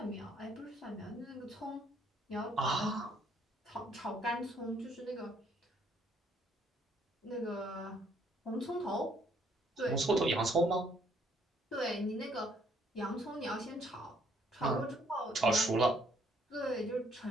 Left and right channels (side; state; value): both; normal; correlation 0.66